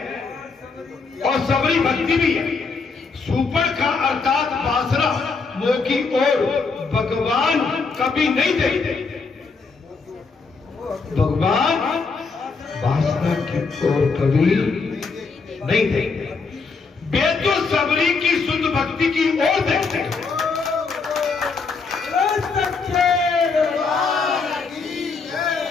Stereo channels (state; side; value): quieter; right; 4.6 dB